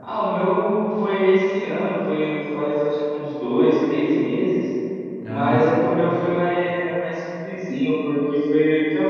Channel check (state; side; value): identical; both; correlation 1.00